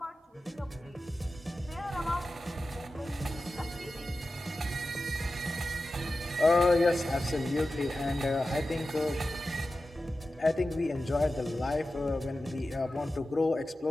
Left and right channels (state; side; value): normal; both; correlation 0.93